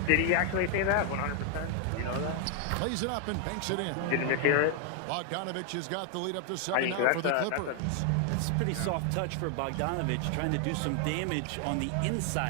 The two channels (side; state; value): both; different; correlation 0.00